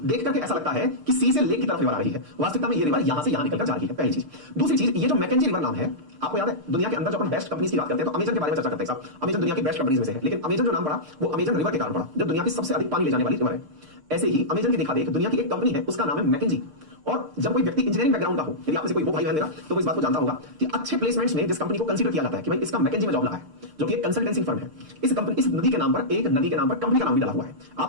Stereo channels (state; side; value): late; left; 6.6 ms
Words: करके ऐसा लगता है कि सी से लेक की तरफ रिवर आ रही है, वास्तविकता में ये रिवर यहां से यहां निकलकर जा रही है, पहली चीज। दूसरी चीज, ये जो मैकेंजी रिवर नाम है, आपको याद है दुनिया के अंदर जब हम बेस्ट कंपनीज की बात करते हैं तो अमेजन के बारे में चर्चा करते हैं साहब। अमेजन दुनिया की बेस्ट कंपनीज में से है, लेकिन अमेजन जो नाम पड़ा वो अमेजन रिवर के कारण पड़ा, जो दुनिया की सबसे अधिक पानी ले जाने वाली रिवर है। ऐसे ही अमेजन की देखा देख दुनिया की एक कंपनी है, उसका नाम है मैकेंजी। और जब कोई व्यक्ति इंजीनियरिंग बैकग्राउंड का हो, यदि आप में से कोई वो भाई बहन मेरा, तो वो इस बात को जानता होगा कि अच्छे प्लेसमेंट्स में जिस कंपनी को कंसीडर किया जाता है कि भाई इसका मैकेंजी में जॉब लगा है, जो कि एक कंसल्टेंसी फर्म है, इस कंपनी, इस नदी के नाम पर, एक नदी के नाम पर कंपनी का नाम भी डाला हुआ है।